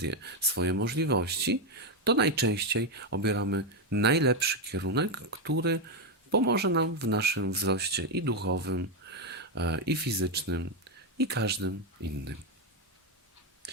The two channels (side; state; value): both; normal; correlation 0.06